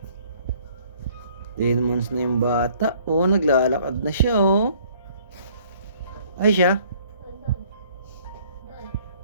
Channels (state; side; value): inverted; both; correlation -0.59